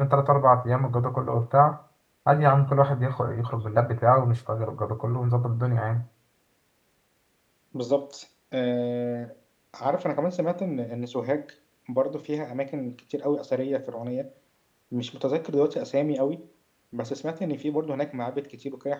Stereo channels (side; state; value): both; identical; correlation 1.00